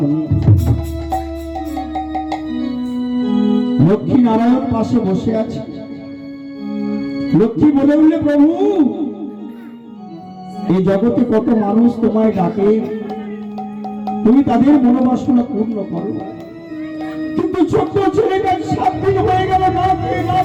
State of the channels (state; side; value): identical; both; correlation 1.00